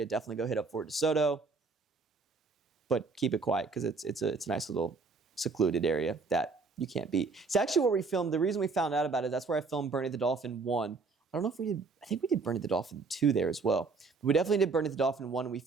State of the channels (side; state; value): left; quieter; 4.3 dB